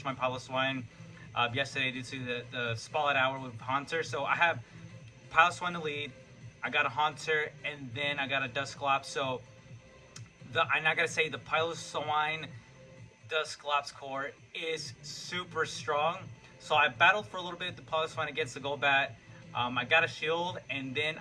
my Pablo Swine yesterday due to the spotlight hour with Hunter. So I have Pile Swine to lead. I got a Haunter, and then I got a Dusclops. So and I gotta say, the Pile Swine Dusclops core is super strong. So I battled for a little bit the Pile Swine against the Golbat. I got a shield, and then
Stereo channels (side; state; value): both; identical; correlation 1.00